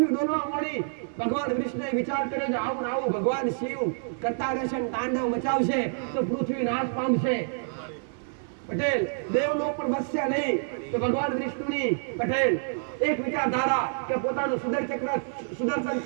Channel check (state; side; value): silent; left; digital silence